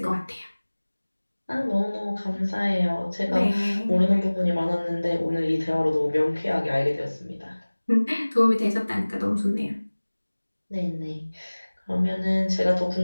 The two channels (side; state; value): both; inverted; correlation -1.00